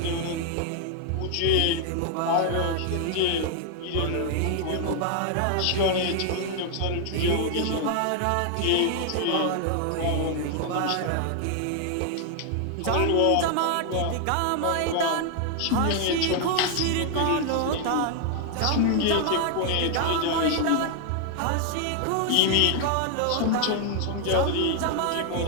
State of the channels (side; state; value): both; different; correlation 0.00